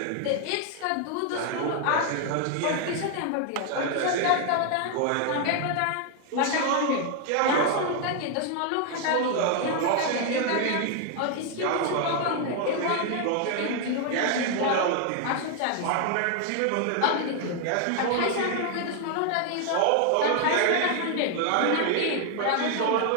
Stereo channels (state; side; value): different; both; correlation 0.00